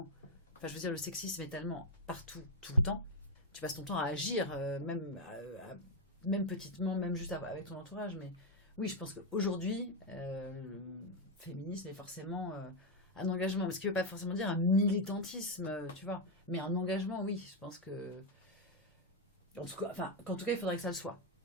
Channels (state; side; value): normal; both; correlation 0.03